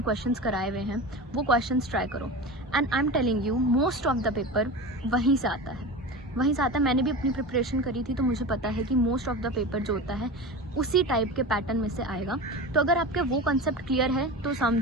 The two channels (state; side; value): normal; both; correlation 0.29